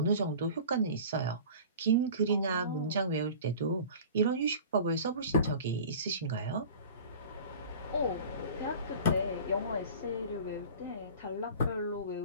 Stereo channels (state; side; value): inverted; both; correlation -0.40